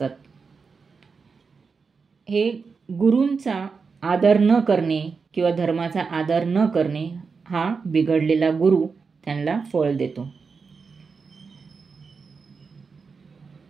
हे गुरूंचा आदर न करणे किंवा धर्माचा आदर न करणे हा बिघडलेला गुरु त्यांना फळ देतो.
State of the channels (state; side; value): quieter; left; 5.1 dB